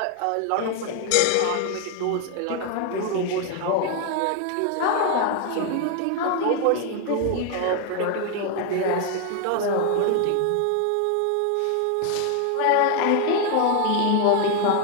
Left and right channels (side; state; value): both; different; correlation 0.00